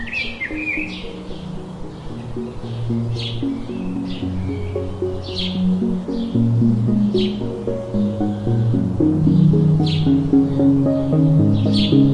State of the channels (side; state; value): both; identical; correlation 1.00